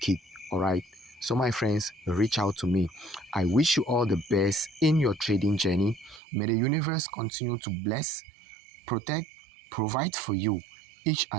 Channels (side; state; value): left; drops out; at 6.2 s